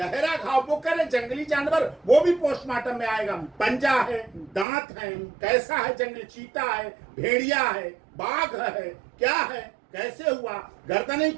घाव वो करे जंगली जानवर, वो भी पोस्टमार्टम में आएगा। पंजा है, दांत है, कैसा है, जंगली चीता है, भेड़िया है, बाघ है, क्या है, कैसे हुआ, गर्दनें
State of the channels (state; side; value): drops out; left; at 4.7 s